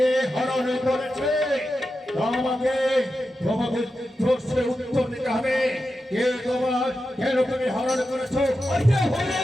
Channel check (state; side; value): normal; both; correlation 0.90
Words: হরণ করেছে তোমাকে তোমাকে প্রশ্নের উত্তর দিতে হবে। কে তোমার কেন তুমি হরণ করেছো? কে হরণ